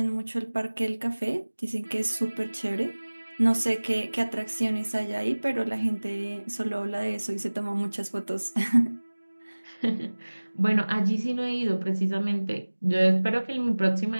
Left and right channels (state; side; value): inverted; both; correlation -1.00